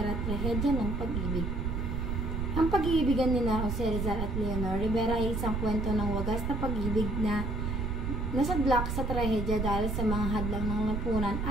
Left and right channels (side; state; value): right; noise; rumble, 1 dB below the sound